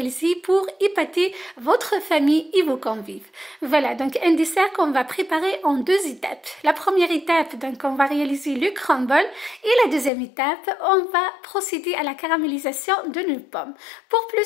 pour épater votre famille et vos convives. Voilà, donc un dessert qu'on va préparer en deux étapes. La première étape, donc on va réaliser le crumble et la deuxième étape, on va procéder à la caramélisation de nos pommes. Pour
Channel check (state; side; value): drops out; right; at 10.1 s